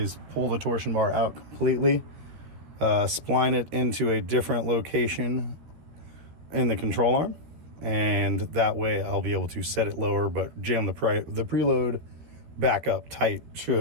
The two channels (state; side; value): late; left; 13 ms